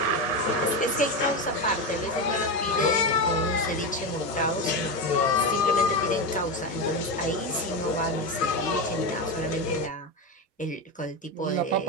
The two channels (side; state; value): both; normal; correlation 0.16